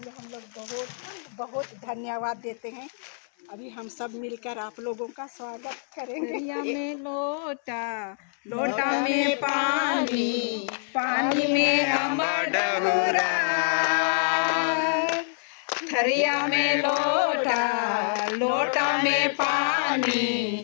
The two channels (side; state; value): right; silent; 61 dB below the other